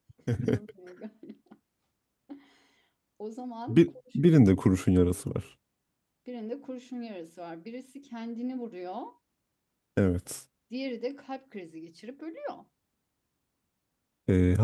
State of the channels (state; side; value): identical; both; correlation 1.00